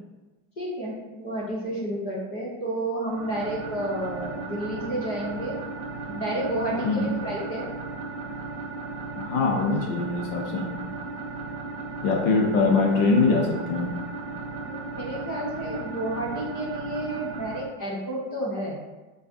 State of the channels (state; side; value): late; right; 5.6 ms